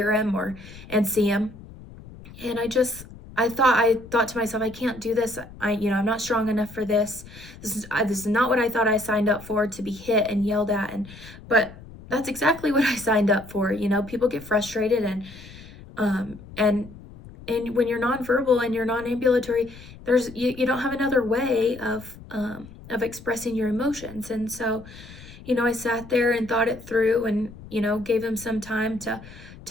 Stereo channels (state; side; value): noise; left; rumble, 18 dB below the sound